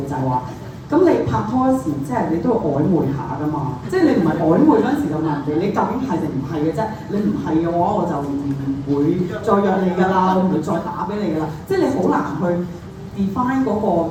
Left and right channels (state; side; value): identical; both; correlation 1.00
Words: 就係話，咁你拍拖嗰時即係你都要曖昧下噶嘛，即係你唔係曖昧嗰陣時就問人哋你究竟係定唔係嘅啫，你唔係嘅話我就唔會再約你㗎啦，我唔會再打俾你㗎啦，即係你好難去 define 嗰個